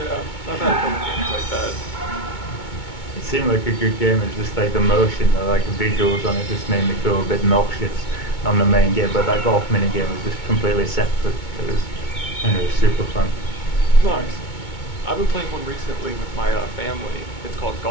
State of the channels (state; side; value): late; right; 2.2 ms